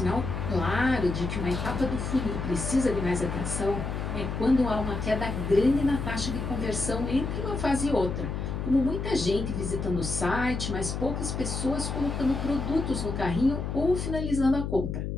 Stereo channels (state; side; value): noise; left; hum, 3 dB below the sound